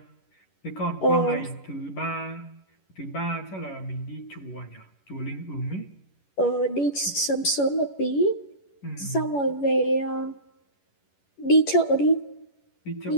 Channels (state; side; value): late; right; 11 ms